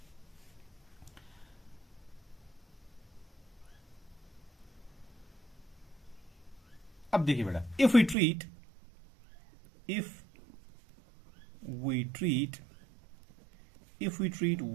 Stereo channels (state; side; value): drops out; left; at 8.2 s